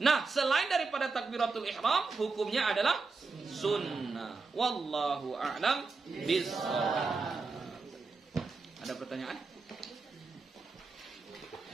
Nah, selain daripada takbiratul ihram, hukumnya adalah sunnah. Wallahu a'lam bishawab. Ada pertanyaan?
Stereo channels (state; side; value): quieter; left; 4.2 dB